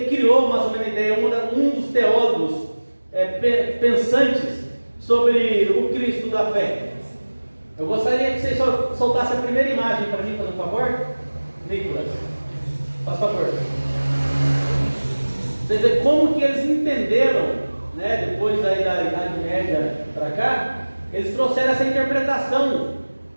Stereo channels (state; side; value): inverted; both; correlation -1.00